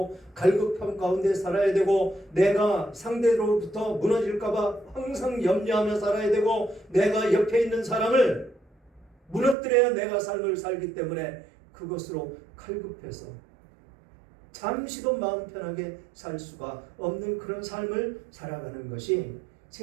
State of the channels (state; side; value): drops out; left; at 9.6 s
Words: 갈급함 가운데 살아야 되고 내가 상대로부터 무너질까봐 항상 염려하며 살아야 되고 내가 옆에 있는 사람을 무너뜨려야 내가 삶을 살기 때문에 그것으로 칼급해서 잠시도 마음 편하게 살 수가 없는 그런 삶을 살아가는 것이